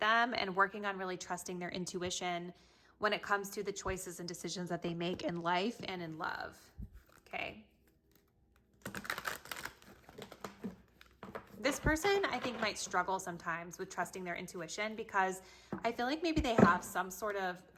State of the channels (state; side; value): identical; both; correlation 1.00